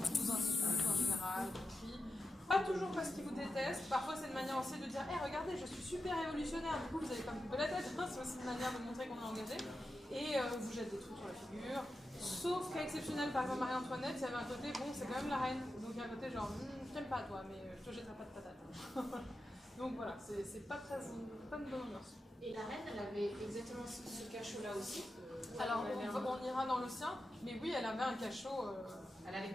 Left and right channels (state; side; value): normal; both; correlation 0.90